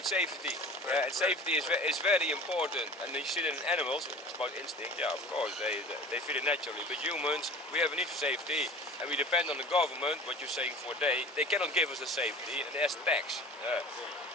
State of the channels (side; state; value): both; normal; correlation 0.41